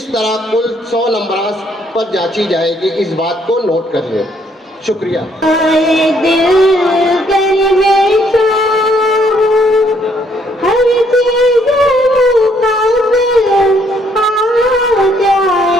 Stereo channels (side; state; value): both; normal; correlation 0.68